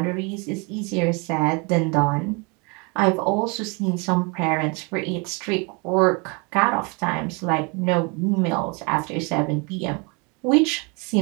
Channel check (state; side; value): quieter; left; 30.7 dB